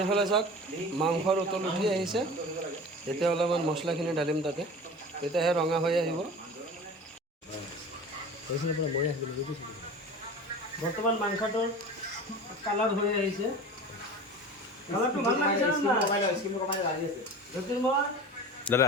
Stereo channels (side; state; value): both; normal; correlation 0.36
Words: এইফালে চাওক মাংসৰ উতল উঠি আহিছে এতিয়া অলপমান মছলাখিনি ঢালিম তাতে তেতিয়াহে ৰঙা হৈ আহিব বৰ্তমান মাংসটোৰ কালাৰ হৈ আহিছে কালাৰটো ভাল লাগিছে দাদা